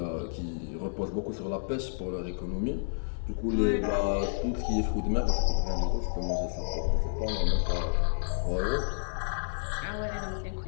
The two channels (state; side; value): silent; right; digital silence